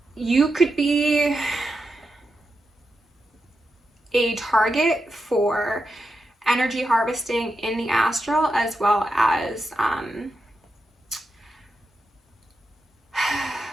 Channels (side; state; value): both; normal; correlation 0.87